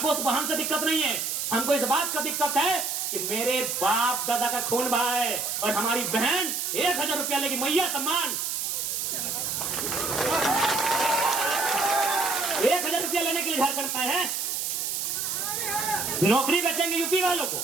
उस बहन से दिक्कत नहीं है, हमको इस बात का दिक्कत है कि मेरे बाप दादा का खून बहा है और हमारी बहन 1000 रुपया लेगी, मैया सम्मान। 1000 रुपया लेने के लिए झारखंड में है। नौकरी बेचेंगे यूपी वालों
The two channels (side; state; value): right; noise; hiss, 1 dB below the sound